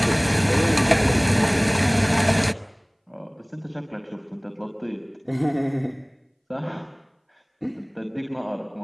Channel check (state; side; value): identical; both; correlation 1.00